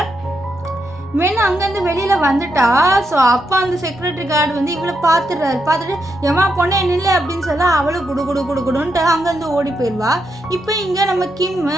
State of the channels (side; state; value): both; normal; correlation 0.82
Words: வெண்ணு அங்கேருந்து வெளியில் வந்துட்டா. ஸோ அப்போ அந்த செக்யூரிட்டி கார்டு வந்து இவளை பார்த்துட்டு எம்மா பொண்ணே நில்லு அப்படின்னு சொல்ல அவளும் குடுன்ட்டு அங்கேருந்து ஓடி போயிடுவா. இப்போ இங்கே நம்ம கிம்